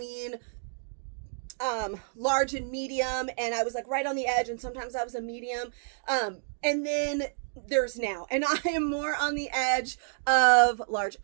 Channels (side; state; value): left; silent; digital silence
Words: large and medium, and I was like right on the edge, and sometimes I was a medium, and then there's now, and I am more on the edge of large,